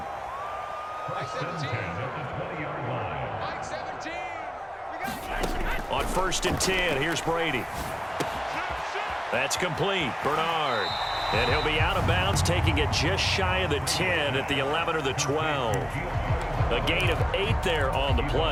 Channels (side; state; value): both; identical; correlation 1.00